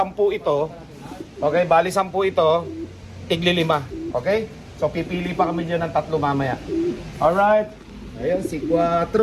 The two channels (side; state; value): both; identical; correlation 1.00